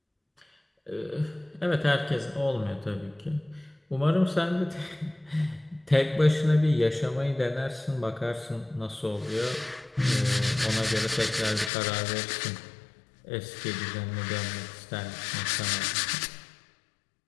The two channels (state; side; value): drops out; right; at 11.7 s